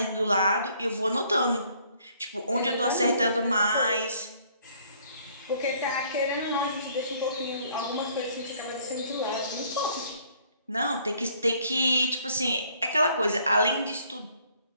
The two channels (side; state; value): both; inverted; correlation -0.62